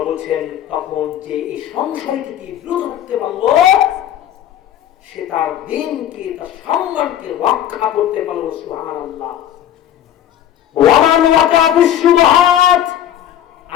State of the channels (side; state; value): right; quieter; 11.0 dB